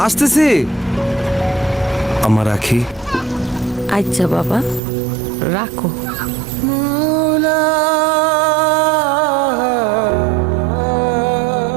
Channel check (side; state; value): left; drops out; at 4.8 s